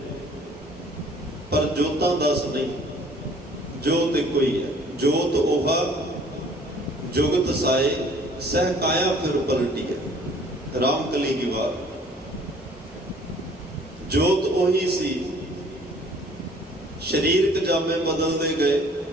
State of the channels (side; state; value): both; normal; correlation 0.55